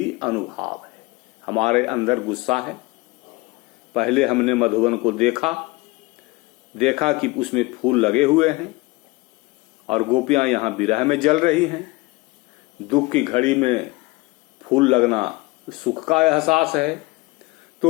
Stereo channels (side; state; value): right; quieter; 22.5 dB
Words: अनुभाव है। हमारे अंदर गुस्सा है, पहले हमने मधुवन को देखा कि उसमें फूल लगे हुए हैं और गोपियां यहां विरह में जल रही हैं। दुख की घड़ी में फूल लगना सुख का एहसास है,